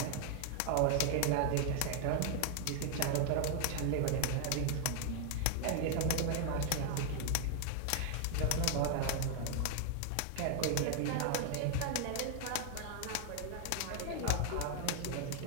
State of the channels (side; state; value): both; different; correlation 0.00